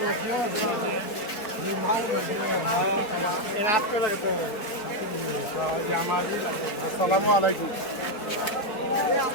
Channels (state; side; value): late; right; 4.2 ms